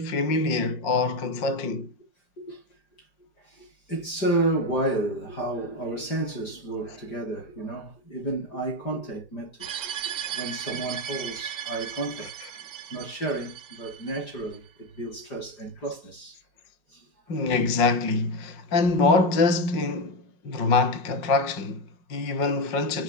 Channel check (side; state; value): right; late; 5.0 ms